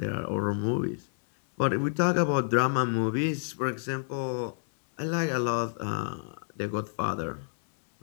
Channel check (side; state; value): right; silent; 59 dB below the other